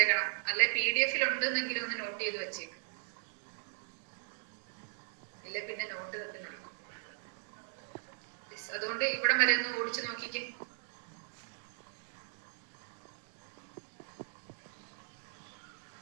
അല്ലെ PDF ഉണ്ടെന്നെങ്കിലും ഒന്ന് നോട്ട് ചെയ്ത് വെച്ചേക്കും. ഇല്ല പിന്നെ നോട്ട് തട്ടുന്നുള്ളൂ. അതുകൊണ്ട് ഇവിടെ വരെ ഒന്ന് ഓടിച്ചു നോക്കിക്കേ.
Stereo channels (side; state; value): left; silent; digital silence